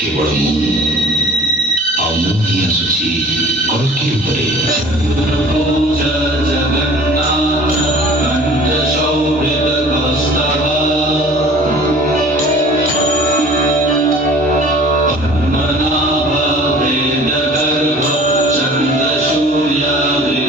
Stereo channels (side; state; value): both; normal; correlation 0.47